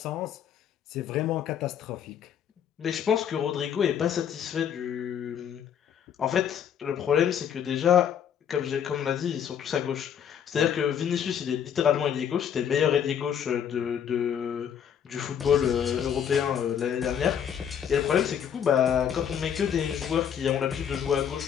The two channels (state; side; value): quieter; right; 8.6 dB